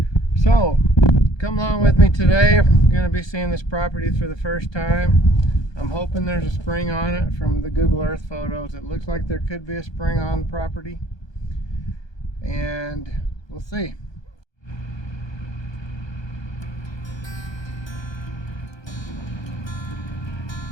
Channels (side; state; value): right; late; 1.2 ms